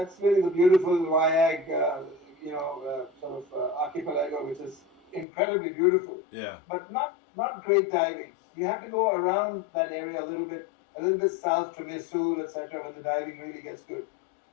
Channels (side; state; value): right; drops out; at 5.2 s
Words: really the beautiful Wayag, sort of archipelago, which is incredibly beautiful. Yeah. But not great diving. You have to go around that area a little bit south to Misul, etc., when the diving really gets good.